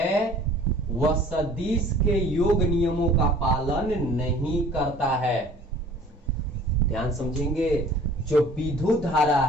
वह सदिश के योग नियमों का पालन नहीं करता है। ध्यान समझेंगे, जो विद्युत धारा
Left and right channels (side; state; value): both; normal; correlation 0.50